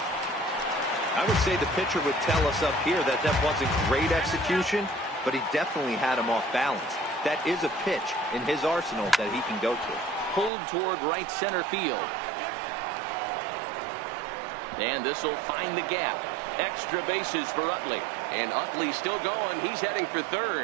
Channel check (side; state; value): left; drops out; at 10.5 s